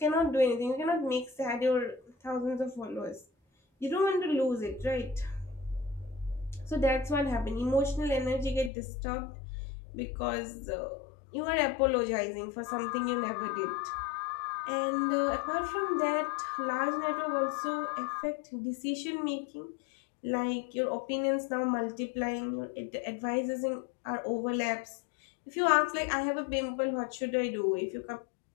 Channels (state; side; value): drops out; right; at 8.7 s